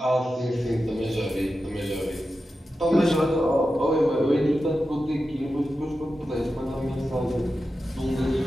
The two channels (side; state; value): both; normal; correlation 0.91